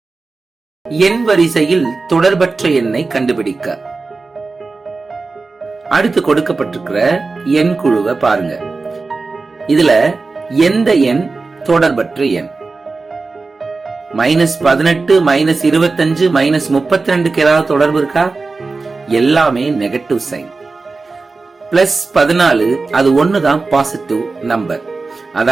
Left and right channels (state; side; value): quieter; left; 3.9 dB